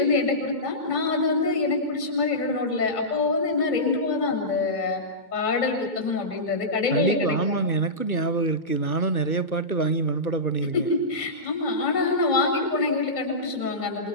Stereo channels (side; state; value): right; late; 2.2 ms